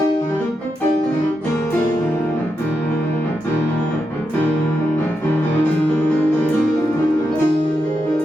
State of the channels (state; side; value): normal; both; correlation 0.85